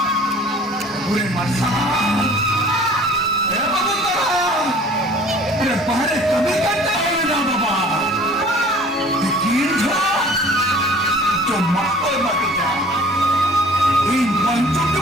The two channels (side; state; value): both; normal; correlation 0.49